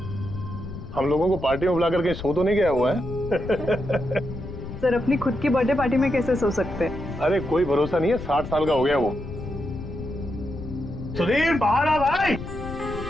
हम लोगों को पार्टी में बुलाकर कहीं सो तो नहीं गया हुआ है? सर अपनी खुद की बर्थडे पार्टी में कैसे सो सकते हैं? अरे कोई भरोसा नहीं है, 60 साल का हो गया वो। सुधीर बाहर आ भाई।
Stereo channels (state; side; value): noise; left; rumble, 10 dB below the sound